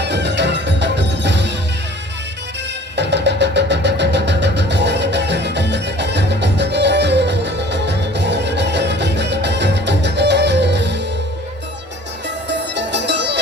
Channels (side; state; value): both; normal; correlation 0.49